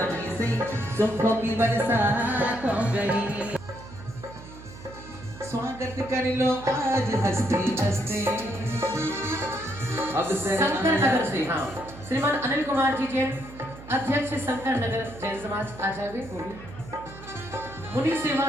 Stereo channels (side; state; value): right; noise; hum, 16 dB below the sound